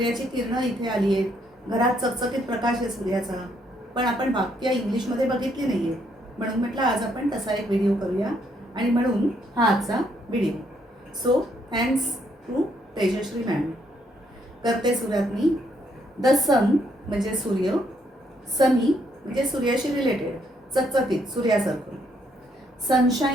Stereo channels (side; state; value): both; normal; correlation 0.72